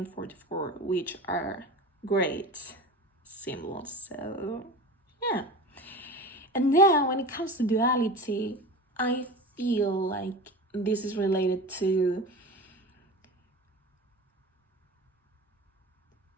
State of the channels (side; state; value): both; normal; correlation 0.33